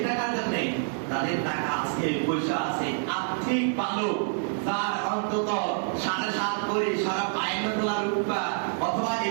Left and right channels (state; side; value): silent; left; 60 dB below the other